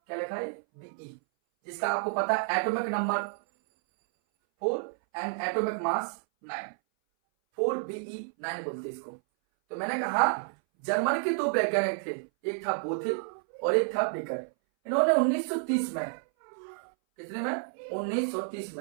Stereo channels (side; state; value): left; silent; 58 dB below the other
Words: क्या लिखा है? बीई, जिसका आपको पता है atomic number 4 and atomic mass 9, 4Be9 बोलते इसको। तो मैंने कहा जर्मनी के 2 वैज्ञानिक थे, एक था बोथे और एक था बेकर। इन्होंने 1930 में, कितने में? 1930